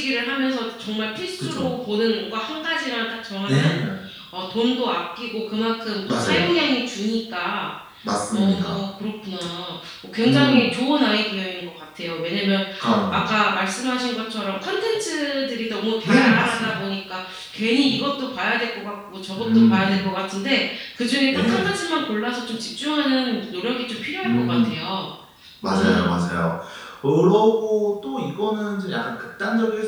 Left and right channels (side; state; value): both; identical; correlation 1.00